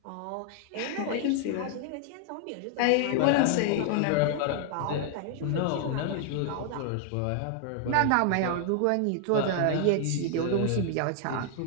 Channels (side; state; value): both; different; correlation 0.00